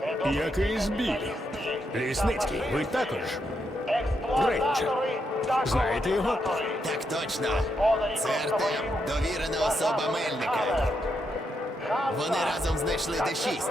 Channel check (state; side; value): normal; both; correlation 0.81